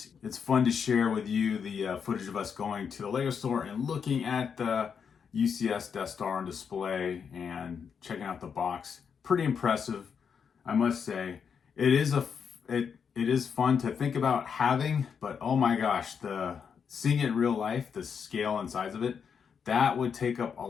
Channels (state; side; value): quieter; right; 6.7 dB